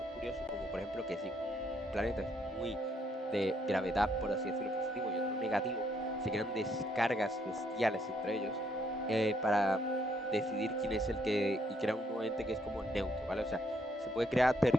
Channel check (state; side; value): normal; both; correlation 0.71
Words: curiosos como por ejemplo que si un planeta es muy de gravedad, por así decirlo, positivo y otro negativo, se crean descargas bestiales entre ellos para decidir quién es el que, y crea un nuevo ente que es como neutro, ¿vale? O sea, se puede crear